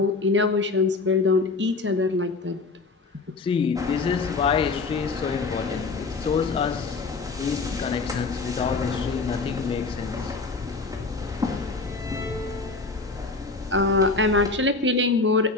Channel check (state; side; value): quieter; right; 3.9 dB